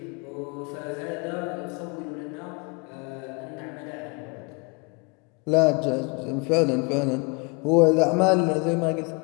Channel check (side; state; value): right; quieter; 31.0 dB